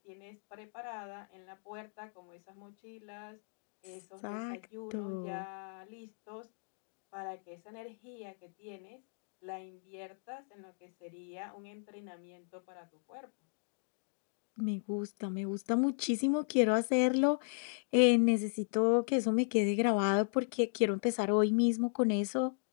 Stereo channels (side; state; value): right; silent; digital silence